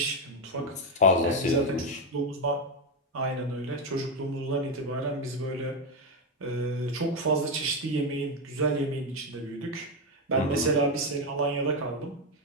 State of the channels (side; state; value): both; normal; correlation 0.08